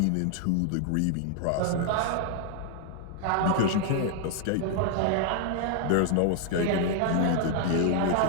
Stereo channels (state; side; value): different; both; correlation 0.00